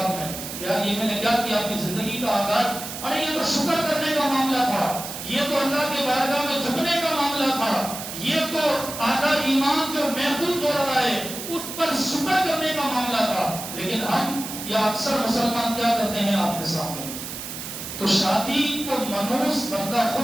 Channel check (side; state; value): right; noise; hiss, 8 dB below the sound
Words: میں، یار یہ میں نے کیا کیا، اپنی زندگی کا آغاز، ارے یہ تو شکر کرنے کا معاملہ تھا، یہ تو اللہ کے بارگاہ میں جھکنے کا معاملہ تھا، یہ تو آدھا ایمان جو محفوظ ہو رہا ہے اس پر شکر کرنے کا معاملہ تھا۔ لیکن ہم یا اکثر مسلمان کیا کرتے ہیں آپ کے سامنے، تو شادی کو منحوس بندہ